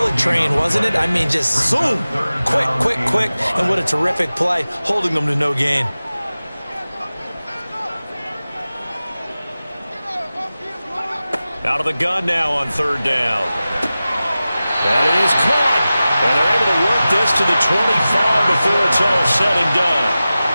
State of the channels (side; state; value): both; inverted; correlation -0.96